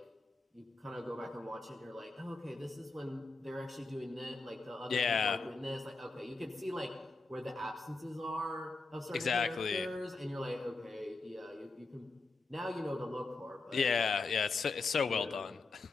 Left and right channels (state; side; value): quieter; right; 3.8 dB